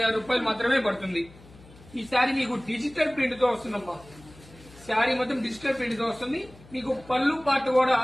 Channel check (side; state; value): left; noise; hum, 22 dB below the sound